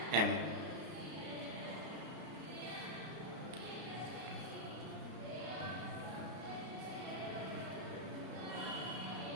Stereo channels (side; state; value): left; late; 33 ms